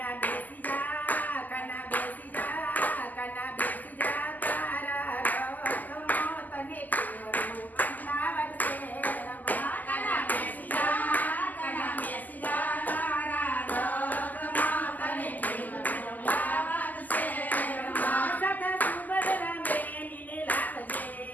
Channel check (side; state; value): right; late; 0.082 ms